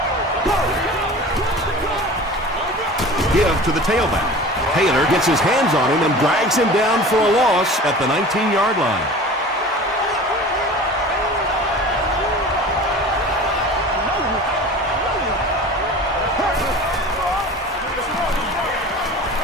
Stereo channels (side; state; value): both; normal; correlation 0.39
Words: Give to the tailback. Taylor gets his hands on him and drags him down for a loss at the 19-yard line.